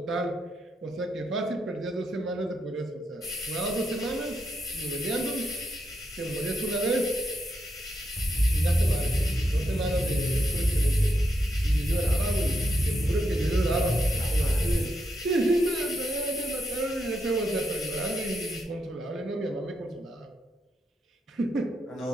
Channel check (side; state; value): both; normal; correlation 0.82